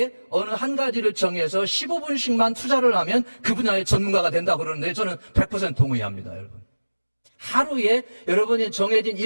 어느 한 가지를 정해서 15분씩만 투자를 하면 그 분야의 전문가가 된다고 그러는데 저는 100% 동의합니다, 여러분. 하루에 여러분이 정해진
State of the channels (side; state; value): both; inverted; correlation -1.00